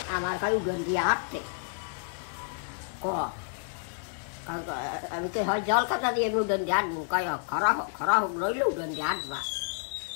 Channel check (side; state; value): right; silent; digital silence